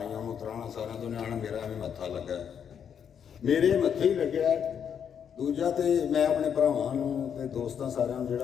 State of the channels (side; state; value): right; quieter; 7.9 dB